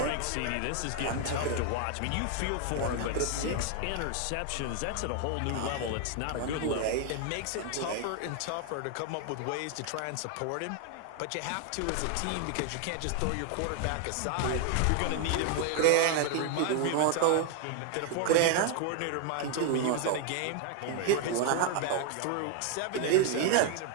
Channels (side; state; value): both; different; correlation 0.00